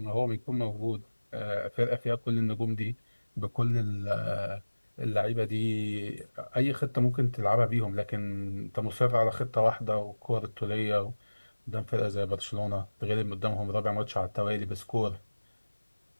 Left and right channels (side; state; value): both; inverted; correlation -1.00